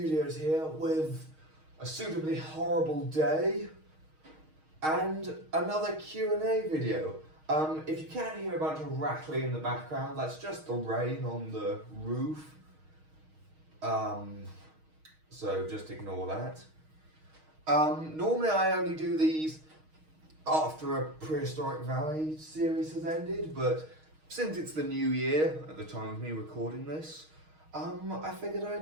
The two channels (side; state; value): left; late; 6.4 ms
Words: here with a suitably horrible day and another Q&A video. If you can't hear a bunch of rattling in the background, that's just the rain on the roof. So just ignore that. Normally I only do these after a Prehistoric Valley series has ended, but since it's the new year, at the time of me recording this, I figured